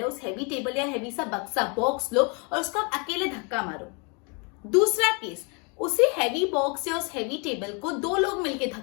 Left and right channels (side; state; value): right; quieter; 33.7 dB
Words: उस हैवी टेबल या हैवी सा बक्सा बॉक्स लो और उसको आप अकेले धक्का मारो। दूसरा केस, उसी हैवी बॉक्स या उस हैवी टेबल को दो लोग मिलके